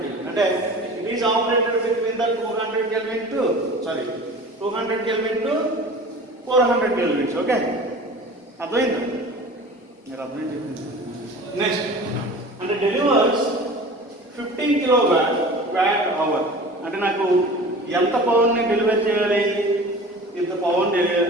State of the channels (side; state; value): both; normal; correlation 0.39